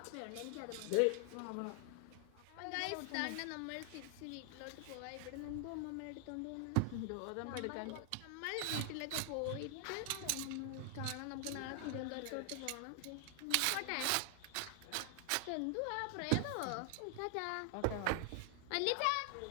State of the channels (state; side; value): different; both; correlation 0.00